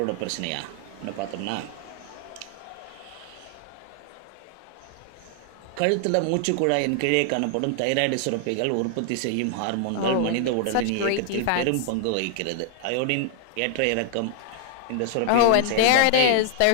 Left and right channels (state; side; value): different; both; correlation 0.00